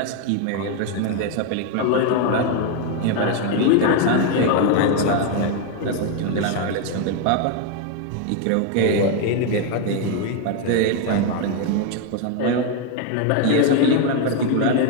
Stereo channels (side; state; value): both; different; correlation 0.01